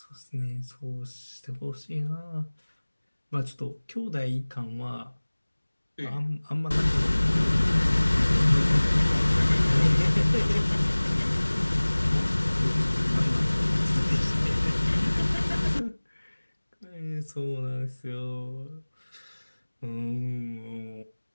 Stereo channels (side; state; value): both; inverted; correlation -1.00